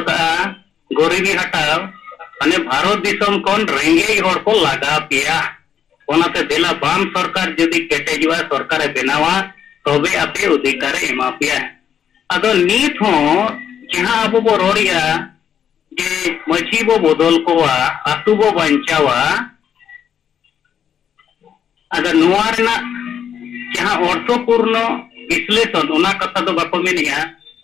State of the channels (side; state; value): right; quieter; 8.6 dB